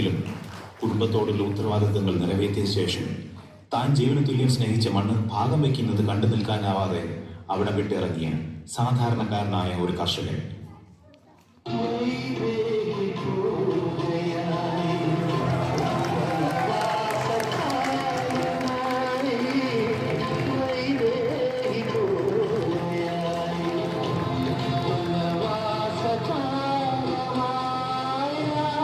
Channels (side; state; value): both; identical; correlation 1.00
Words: കുടുംബത്തോടുള്ള ഉത്തരവാദിത്തങ്ങൾ നിറവേറ്റിയ ശേഷം താൻ ജീവന തുല്യം സ്നേഹിച്ച മണ്ണ് ഭാഗം വയ്ക്കുന്നത് കണ്ടു നിൽക്കാനാവാതെ അവിടെ വിട്ടിറങ്ങിയ സാധാരണക്കാരനായ ഒരു കർഷകൻ.